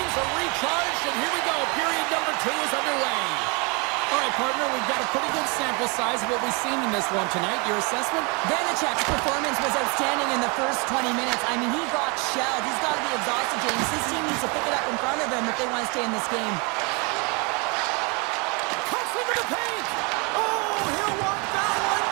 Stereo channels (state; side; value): quieter; left; 31.2 dB